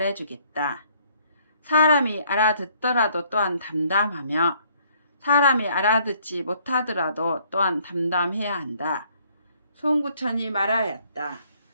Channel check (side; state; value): both; inverted; correlation -0.63